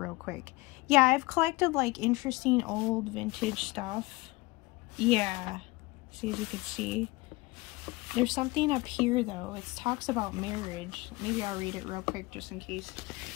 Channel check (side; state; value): right; quieter; 22.4 dB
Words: quick. Yeah, I've collected like interesting old vintage stuff. Yeah, see, as you can see. There's something up here though. It talks about marriage. Maybe I'll read it real quick just in case.